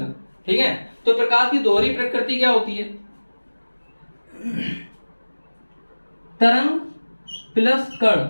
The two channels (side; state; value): both; inverted; correlation -1.00